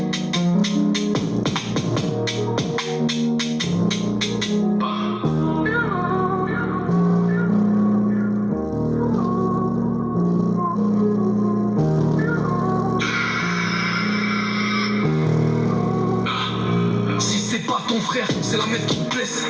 Si c'est pas ton frère, c'est la meuf qui te blesse.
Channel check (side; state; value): both; identical; correlation 1.00